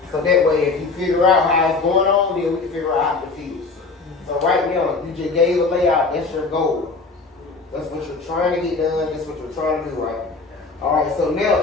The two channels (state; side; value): quieter; right; 4.1 dB